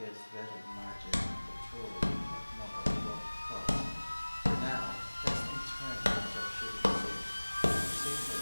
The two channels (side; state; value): both; inverted; correlation -1.00